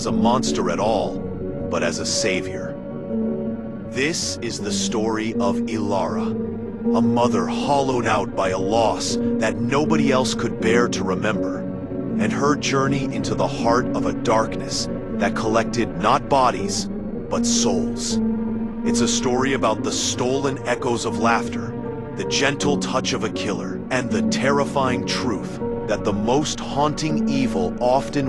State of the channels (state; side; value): identical; both; correlation 1.00